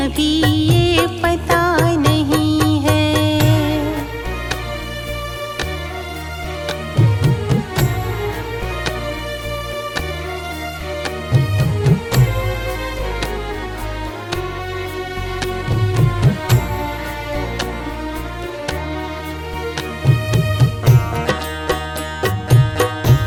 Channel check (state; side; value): identical; both; correlation 1.00